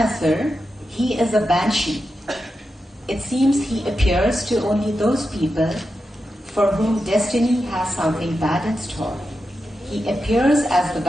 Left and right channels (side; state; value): both; normal; correlation 0.89